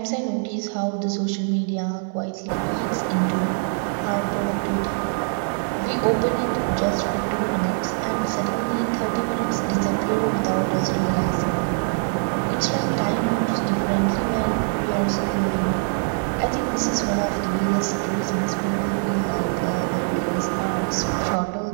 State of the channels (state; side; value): silent; left; 58 dB below the other